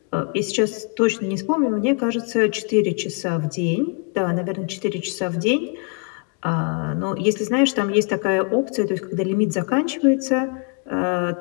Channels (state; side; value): quieter; right; 36.7 dB